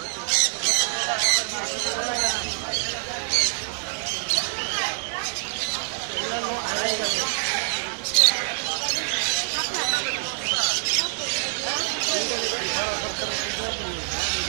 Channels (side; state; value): left; silent; digital silence